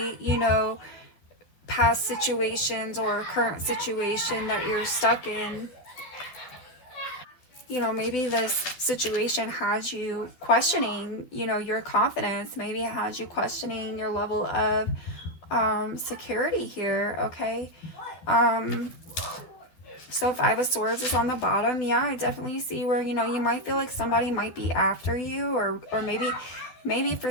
you know, past situations or current situation that you're stuck in. You know, maybe this situation has you questioning, you know, your confidence. Maybe it has you questioning your level of security here, okay? So 5 of Swords is on the bottom. Yeah, I definitely see where, you know, you might feel like somebody might be after you, or maybe for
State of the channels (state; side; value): late; right; 12 ms